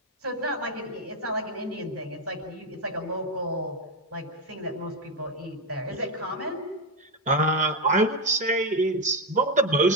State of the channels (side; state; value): both; normal; correlation 0.09